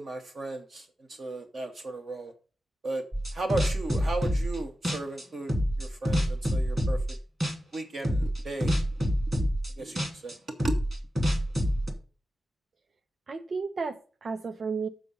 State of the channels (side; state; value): both; normal; correlation 0.93